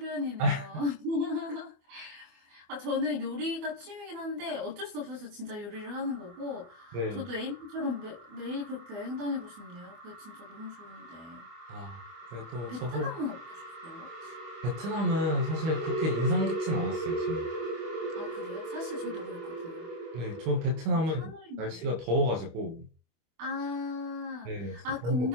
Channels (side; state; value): left; late; 25 ms